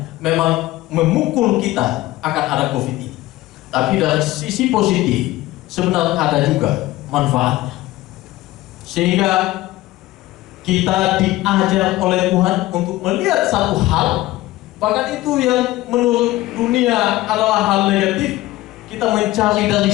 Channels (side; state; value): right; quieter; 17.4 dB